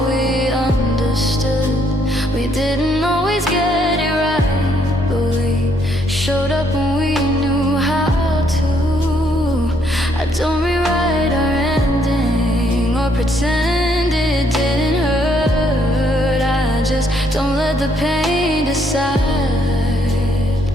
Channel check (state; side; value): normal; both; correlation 0.70